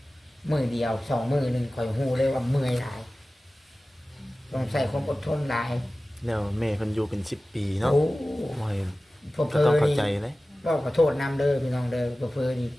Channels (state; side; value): normal; both; correlation 0.96